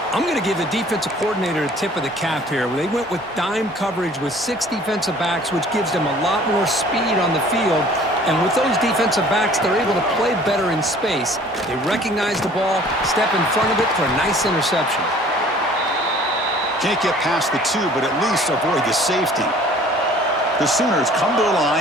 I'm going to give the defensive coordinator a tip of the cap here. They went with dime coverage with 6 defensive backs, which gives them a lot more speed on the field. And with those defensive backs, they're able to play better in space. They recognize the ball, step in front of it for a nice interception. Can't get past the 2, but at least avoid the safety. The Sooners come to the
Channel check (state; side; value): normal; both; correlation 0.52